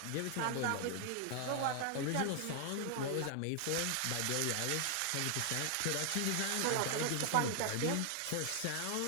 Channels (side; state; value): both; different; correlation 0.00